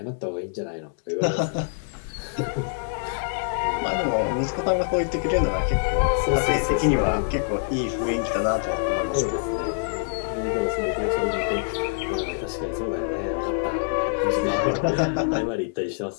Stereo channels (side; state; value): right; silent; 62 dB below the other